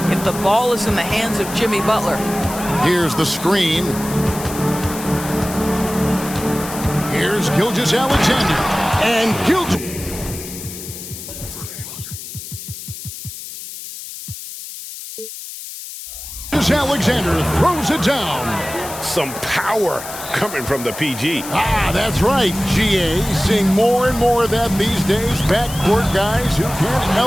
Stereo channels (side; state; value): left; noise; hiss, 11 dB below the sound